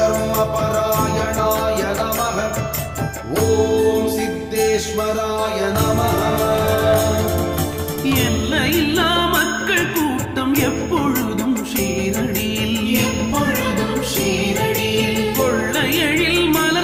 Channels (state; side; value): identical; both; correlation 1.00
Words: பராயணாய நமக. ஓம் சித்தேஸ்வராய நமக. எல்லையில்லா மக்கள் கூட்டம் எப்பொழுதும் ஷீரடியில். எப்பொழுதும் ஷீரடியில். கொள்ளையழில்